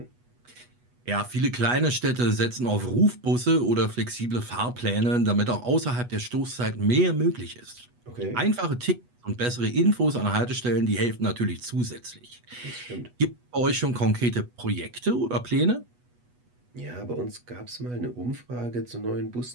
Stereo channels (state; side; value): late; left; 8.2 ms